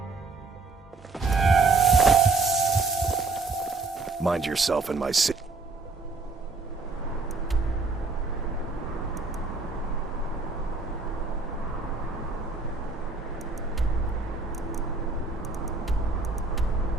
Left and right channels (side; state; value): left; quieter; 3.9 dB